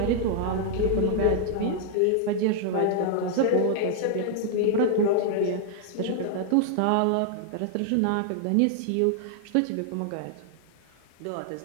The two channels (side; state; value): both; different; correlation 0.00